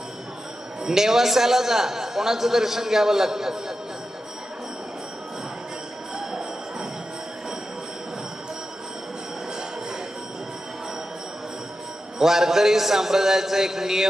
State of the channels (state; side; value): normal; both; correlation 0.91